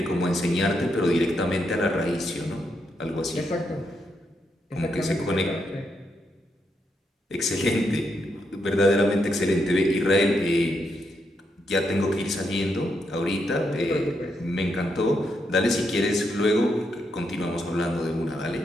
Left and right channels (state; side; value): normal; both; correlation 0.80